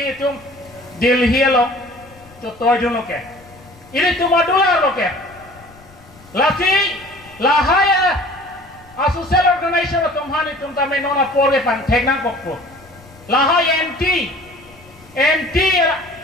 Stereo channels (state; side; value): noise; left; rumble, 25 dB below the sound